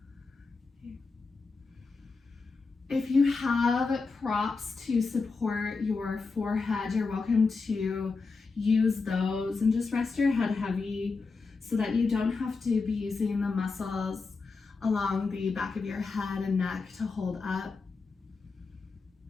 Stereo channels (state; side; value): quieter; right; 4.3 dB